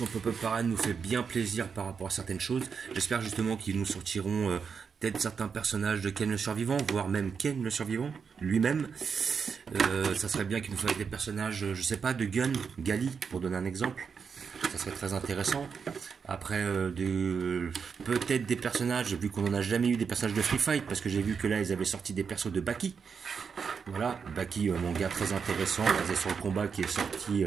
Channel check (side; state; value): left; quieter; 6.1 dB